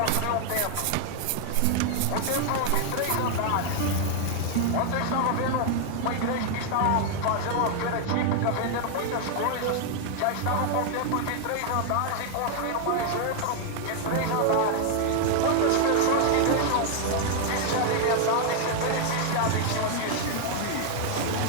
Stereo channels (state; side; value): different; both; correlation 0.00